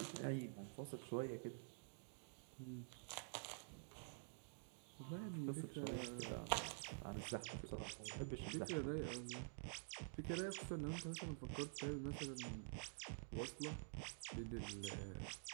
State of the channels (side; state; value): left; silent; digital silence